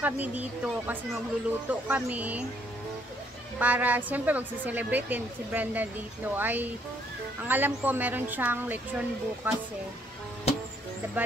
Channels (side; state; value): both; normal; correlation 0.68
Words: dito kasi magluluto kami para siyempre magsiselebrate din si Brenda dito. Ay, ang alam ko meron siyang lechon bukas eh.